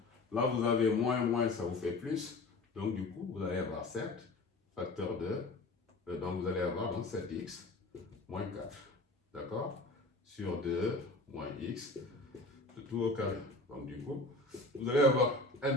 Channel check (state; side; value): quieter; right; 3.1 dB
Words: là vous avez moins, ça vous fait plus, donc du coup, vous allez avoir 7 facteur de, donc vous allez avoir donc 7x moins 4, d'accord, sur 2 moins x, le tout au carré. Donc du coup, vous allez avoir